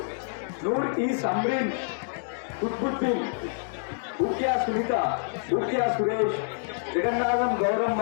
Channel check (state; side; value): silent; right; digital silence